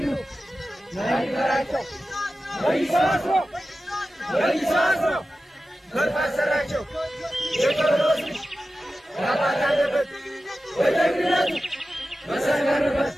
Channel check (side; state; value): both; normal; correlation 0.94